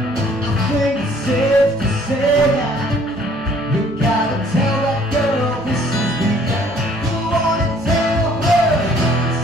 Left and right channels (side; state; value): both; normal; correlation 0.58